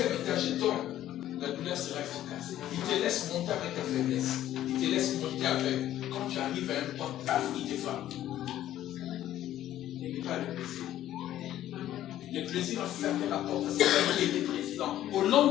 étage, je tombe, la douleur sera efficace. Il te laisse monter avec ta faiblesse. Il te laisse monter avec. Quand tu arrives à un point, paf, il te frappe. Il n'est pas le plaisir. Le plaisir a fermé la porte à celui qui était président.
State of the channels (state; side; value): quieter; right; 12.7 dB